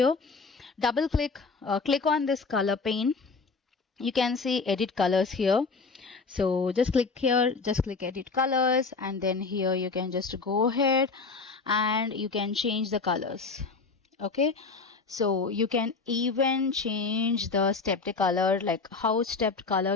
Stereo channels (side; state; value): right; quieter; 4.4 dB